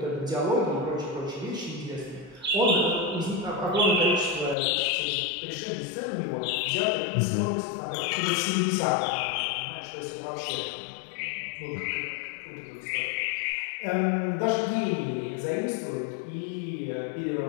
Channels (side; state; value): right; drops out; at 4.5 s